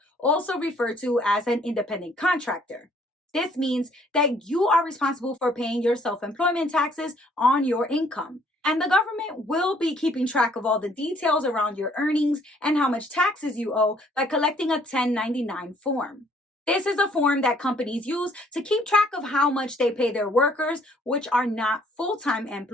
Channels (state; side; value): normal; both; correlation 0.63